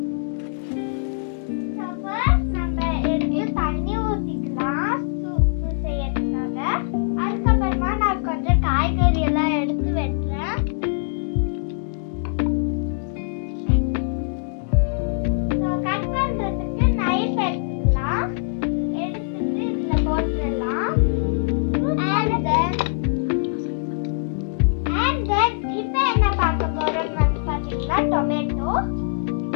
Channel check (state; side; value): silent; right; digital silence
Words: நம்ம எடுத்து தண்ணி ஊத்திக்கலாம் சூப்பு செய்யறதுக்காக. அதுக்கப்புறமா நான் கொஞ்சம் காய்கறி எல்லாம் எடுத்து வெட்டுறேன். கட் பண்றதுக்கு நைஃப் எடுத்துக்கலாம். எடுத்துட்டு இதுல போட்டுடலாம். And then இப்போ என்ன பார்க்க போறோம்னு வந்து பாத்தீங்கன்னா டொமேட்டோ.